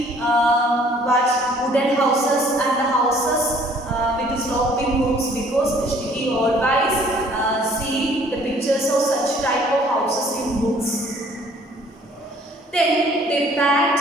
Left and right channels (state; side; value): normal; both; correlation 0.57